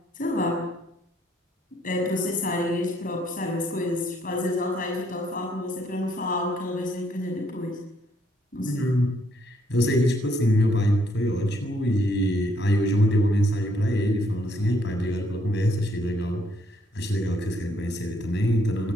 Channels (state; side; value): normal; both; correlation 0.69